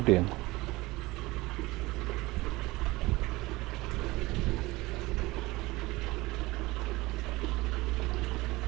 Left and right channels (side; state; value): left; quieter; 20.9 dB